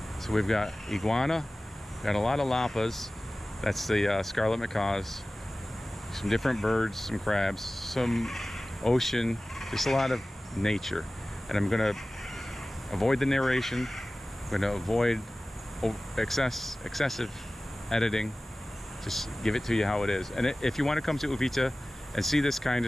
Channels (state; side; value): normal; both; correlation 0.97